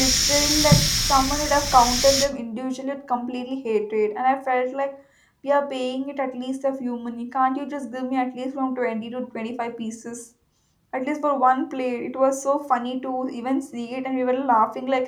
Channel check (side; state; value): both; identical; correlation 1.00